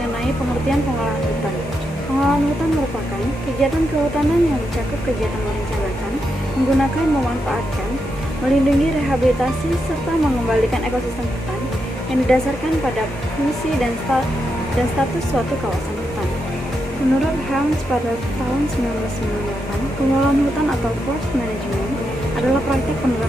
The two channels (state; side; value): normal; both; correlation 0.84